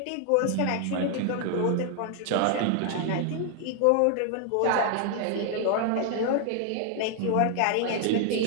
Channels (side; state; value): both; different; correlation 0.00